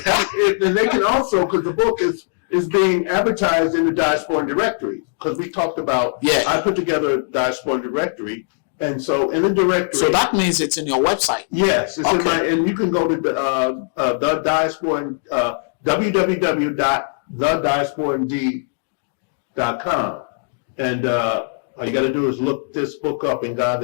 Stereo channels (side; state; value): right; silent; digital silence